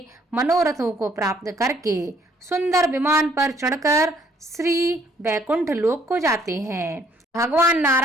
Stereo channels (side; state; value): both; normal; correlation 0.64